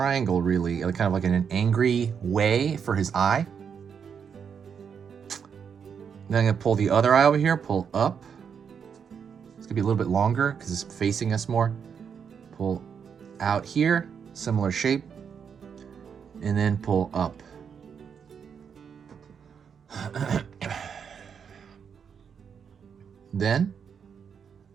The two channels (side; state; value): left; quieter; 7.0 dB